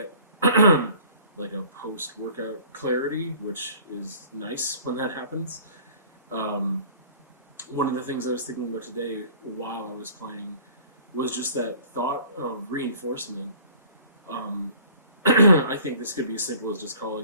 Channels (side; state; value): both; inverted; correlation -0.50